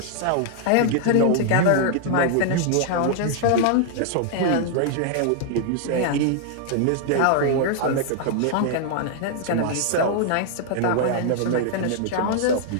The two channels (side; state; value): both; different; correlation -0.01